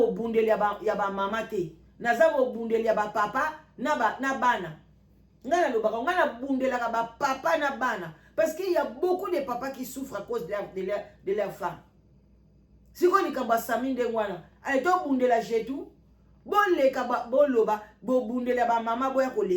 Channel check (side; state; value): both; identical; correlation 1.00